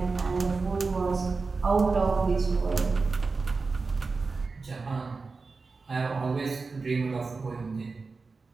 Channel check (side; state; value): left; quieter; 4.2 dB